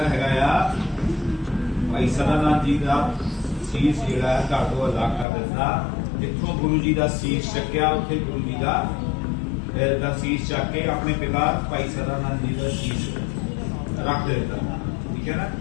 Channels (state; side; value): drops out; right; at 5.2 s